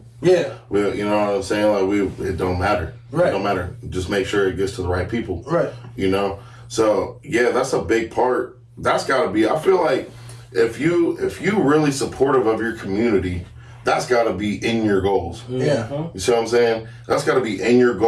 Yeah. Well, you know what I'm saying? Like, it don't matter. Right. It don't matter. Just make sure it gets to the right people. Right. You know? So, yeah, that's a big part. That's got to be, I feel like if you really supportive of your community, that's got to be in your goals. Yeah. You see what I'm saying? That's got to be in your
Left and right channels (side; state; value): both; identical; correlation 1.00